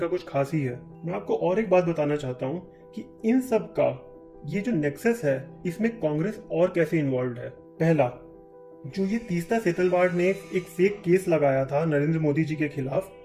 कुछ खास ही है। मैं आपको और एक बात बताना चाहता हूँ कि इन सब का ये जो नेक्सस है, इसमें कांग्रेस और कैसे इन्वॉल्व है। पहला, जो ये तीस्ता सेतलवाड़ ने एक फेक केस लगाया था नरेंद्र मोदी जी के खिलाफ,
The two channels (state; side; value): identical; both; correlation 1.00